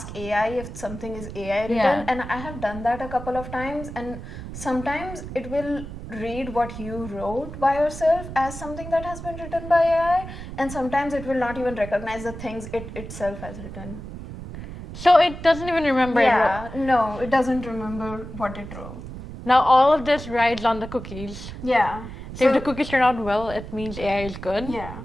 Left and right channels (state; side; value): noise; right; rumble, 11 dB below the sound